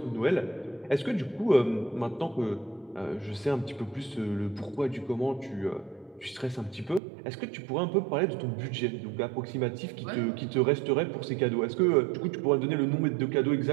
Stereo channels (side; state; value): left; drops out; at 7.0 s